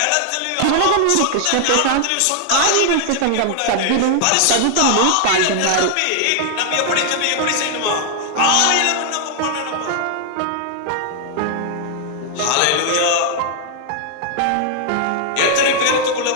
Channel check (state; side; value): different; both; correlation 0.00